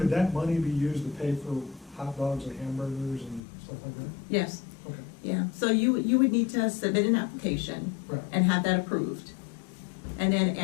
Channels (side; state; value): right; drops out; at 3.4 s